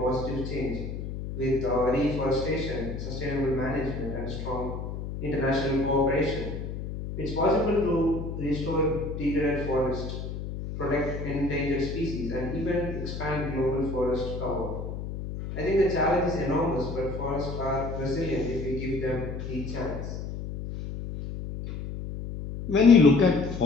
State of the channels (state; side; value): noise; left; hum, 7 dB below the sound